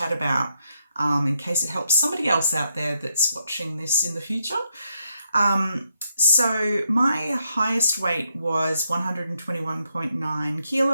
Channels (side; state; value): both; inverted; correlation -0.79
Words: about in case it helps somebody else out there that's watching this in the future. So my highest weight was 121.9